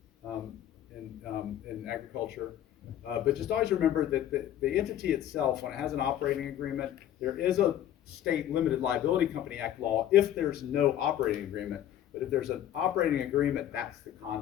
in agriculture. But just always remember that the entity itself, when it has an operating agreement, there is a state limited liability company act law if there's no operating agreement. But if there's an operating agreement, that's the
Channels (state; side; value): quieter; right; 11.5 dB